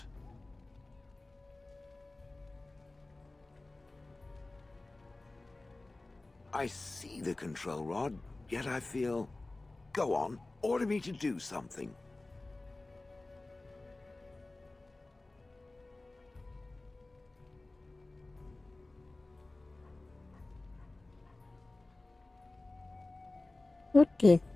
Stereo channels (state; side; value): quieter; right; 3.0 dB